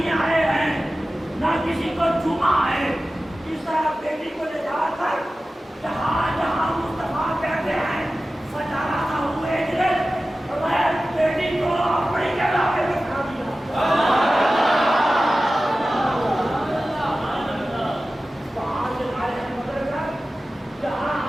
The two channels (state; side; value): normal; both; correlation 0.95